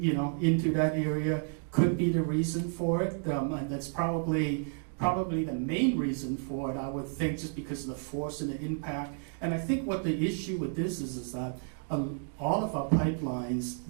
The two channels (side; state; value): left; silent; 56 dB below the other